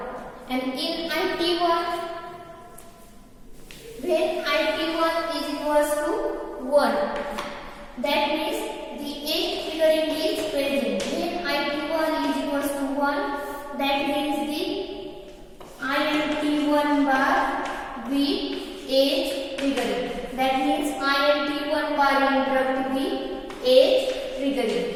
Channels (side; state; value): both; identical; correlation 1.00